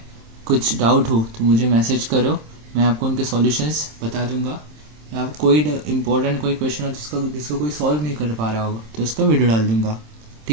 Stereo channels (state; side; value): late; left; 27 ms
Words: कुछ डाउट हो तो मुझे मैसेज करो, मैं आपको उनके सॉल्यूशंस बता दूंगा। या कोई इम्पोर्टेंट कोई क्वेश्चन हो जिसको कोई सॉल्व नहीं कर पा रहा होगा तो उसका वीडियो डाल दूंगा,